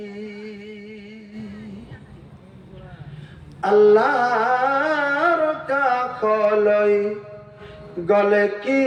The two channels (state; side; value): identical; both; correlation 1.00